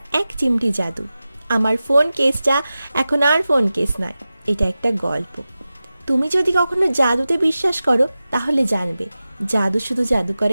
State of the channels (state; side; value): inverted; both; correlation -0.95